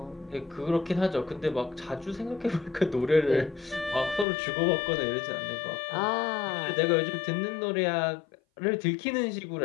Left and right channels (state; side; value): drops out; right; at 4.2 s